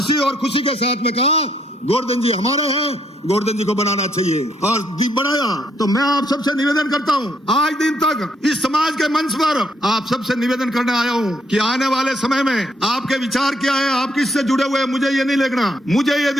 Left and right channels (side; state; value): both; normal; correlation 0.72